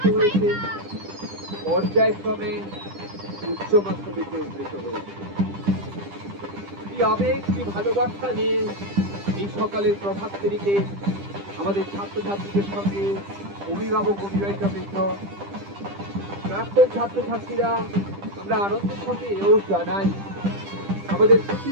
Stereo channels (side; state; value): left; late; 10 ms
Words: হয়েছে, পর্যায়ক্রমে উচ্চ মাধ্যমিকে উন্নীত হয়েছে। কি আবেগ, কি ভালোবাসা নিয়ে এই সকালের প্রভাত ফেরিতে আমাদের ছাত্রছাত্রীদের সঙ্গে অভিভাবক অভিভাবিকাবৃন্দ, প্রাক্তন ছাত্রছাত্রীরা আমরা আনন্দের সঙ্গে এও জানাই আমাদের